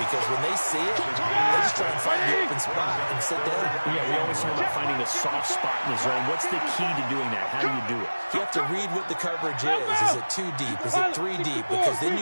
because when they see it, they just try and find the open spot and sit down. Yeah, we always talk about finding a soft spot in the zone. What's the key to doing that? How do you do it? You have to read what the coverage is. Is it 2 deep? Is it 3 deep? Because then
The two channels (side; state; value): both; inverted; correlation -1.00